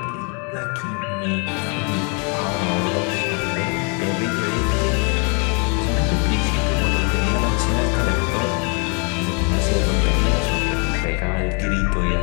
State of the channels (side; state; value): right; quieter; 35.8 dB